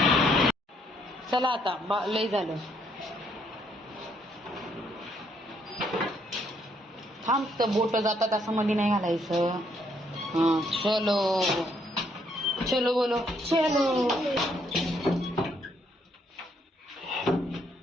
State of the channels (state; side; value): normal; both; correlation 0.71